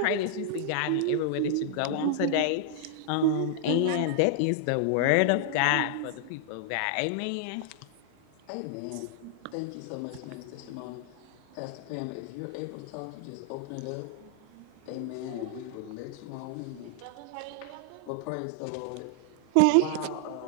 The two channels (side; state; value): both; different; correlation -0.01